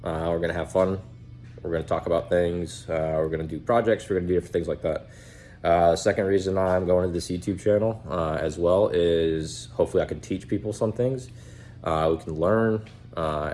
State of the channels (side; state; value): both; identical; correlation 1.00